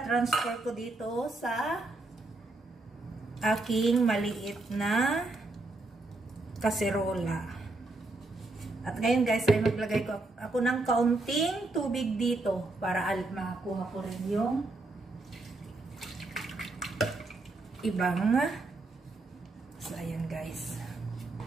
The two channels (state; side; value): quieter; left; 3.1 dB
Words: ko dito sa aking maliit na kaserola. At ngayon guys ay maglagay ko ako ng kaunting tubig dito para makuha ko rin yung ibang. So ayan guys.